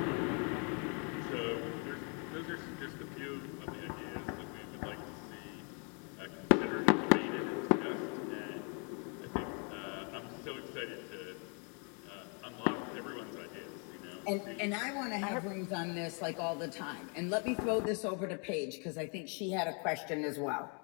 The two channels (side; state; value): right; quieter; 37.3 dB